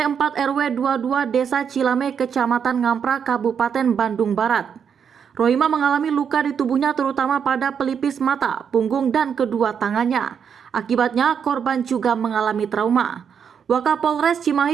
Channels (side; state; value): left; quieter; 7.4 dB